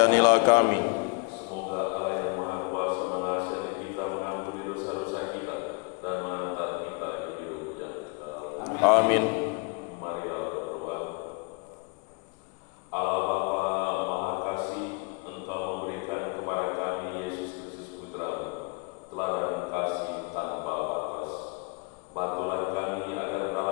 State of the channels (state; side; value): quieter; right; 31.8 dB